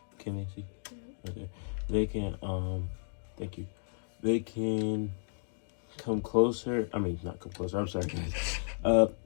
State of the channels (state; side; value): silent; right; digital silence